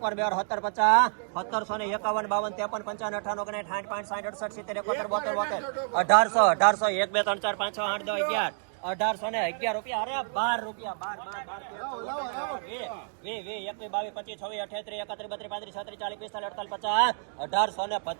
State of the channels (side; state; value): left; silent; digital silence